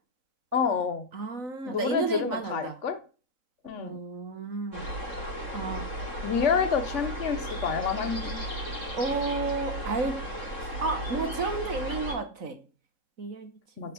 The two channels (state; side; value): late; left; 3.9 ms